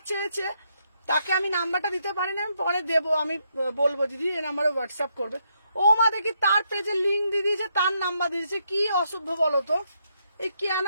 চেয়েছে, তাকে আমি নাম্বারটা দিতে পারি না, আমি পরে দেবো, আমি বলবো দিদি এই নাম্বারে হোয়াটসঅ্যাপ করবে। ও মা দেখি তার পেজে লিঙ্ক দিয়ে দিয়েছে, তার নাম্বার দিয়েছে। কি অসভ্য বলো তো, এই কেন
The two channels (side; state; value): both; inverted; correlation -0.77